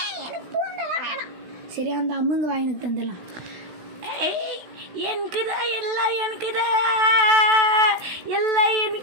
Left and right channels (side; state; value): left; late; 16 ms